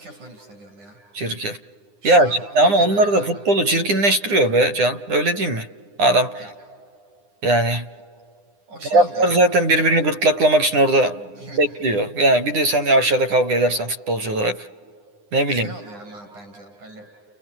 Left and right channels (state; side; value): late; left; 9.9 ms